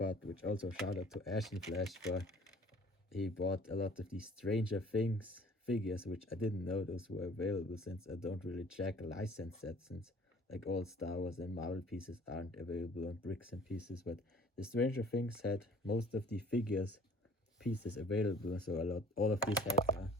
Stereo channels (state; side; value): normal; both; correlation 0.52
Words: which also shout out to Ash and Flash for he bought a lot of these Stranger Things figures, which I didn't know those were available, since I don't really check license sets, since like all Star Wars and Marvel pieces aren't available on Bricks and Pieces. But the Stranger Things had most of the figures pieces available, so all of these heads are